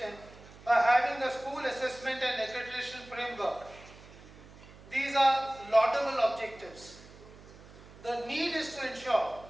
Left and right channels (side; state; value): right; noise; hum, 20 dB below the sound